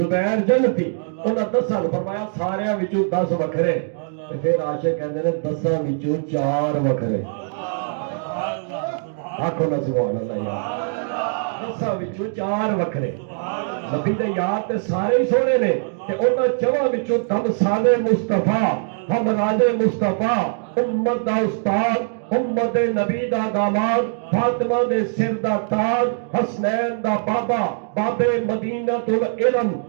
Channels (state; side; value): silent; left; digital silence